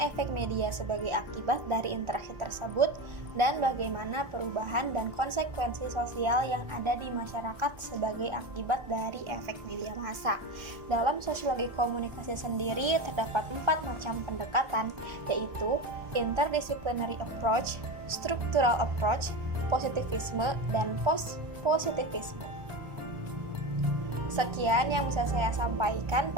efek media sebagai akibat dari interaksi tersebut, dan bagaimana perubahan dan konsekuensi sosial yang ada di masyarakat sebagai akibat dari efek media massa. Dalam sosiologi komunikasi sendiri terdapat 4 macam pendekatan, yaitu interdisciplinary approach, structural approach, positivisme, dan post-positivisme. Sekian yang bisa saya sampaikan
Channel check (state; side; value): late; left; 1.3 ms